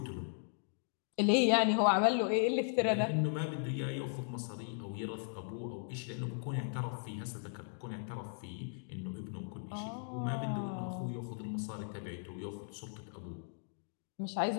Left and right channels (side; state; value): right; silent; digital silence